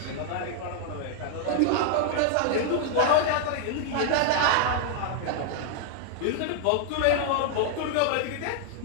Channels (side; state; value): both; different; correlation 0.00